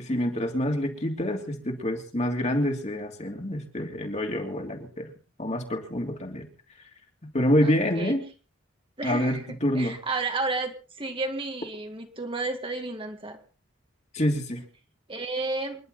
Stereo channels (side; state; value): both; normal; correlation 0.60